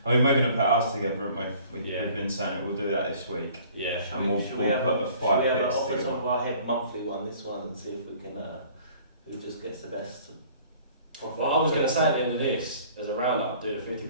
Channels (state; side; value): inverted; both; correlation -0.52